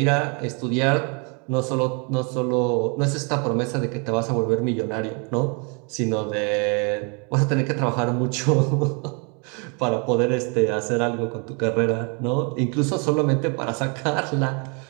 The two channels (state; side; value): quieter; left; 34.7 dB